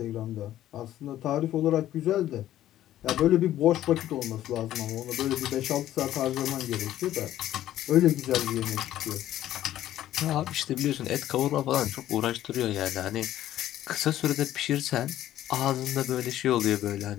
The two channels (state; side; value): quieter; right; 13.0 dB